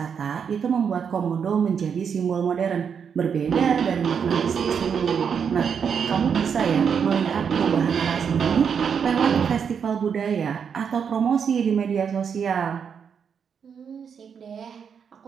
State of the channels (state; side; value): quieter; left; 7.0 dB